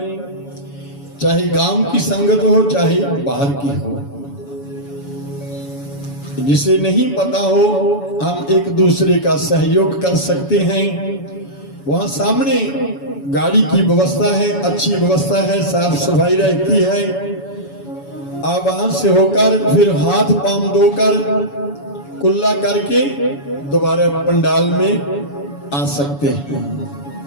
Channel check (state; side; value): late; right; 7.0 ms